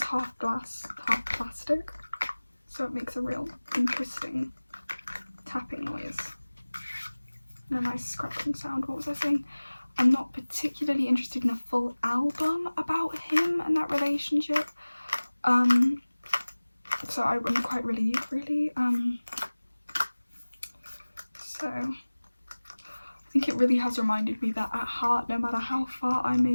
half glass, half plastic, so it makes a real interesting tapping noise and a nice scratching sound. What was I saying? I'm not particularly interested in a full album about him and that relationship. So I'm quite really so I think it really has reminded me that at heart, no matter how far I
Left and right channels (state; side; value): inverted; both; correlation -1.00